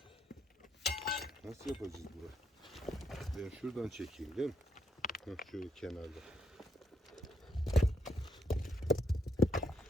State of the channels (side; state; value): both; normal; correlation 0.75